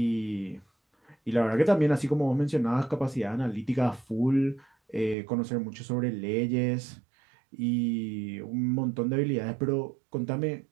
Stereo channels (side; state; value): left; drops out; at 5.2 s